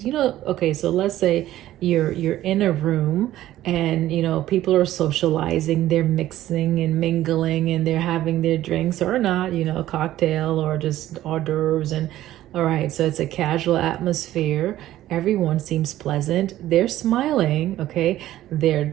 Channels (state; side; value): quieter; left; 14.0 dB